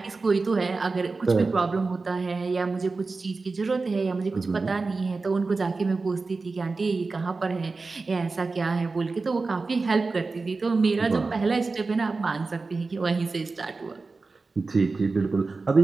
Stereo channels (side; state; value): left; quieter; 3.9 dB